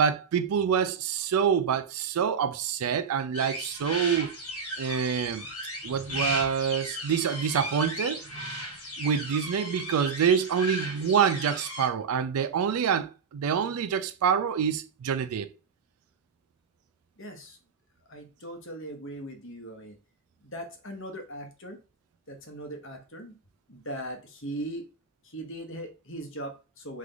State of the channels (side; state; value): left; quieter; 6.3 dB